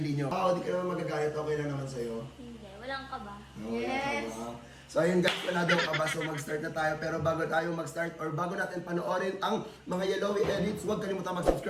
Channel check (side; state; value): both; identical; correlation 1.00